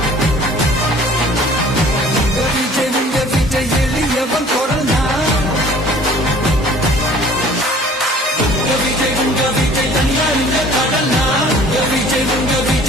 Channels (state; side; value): normal; both; correlation 0.50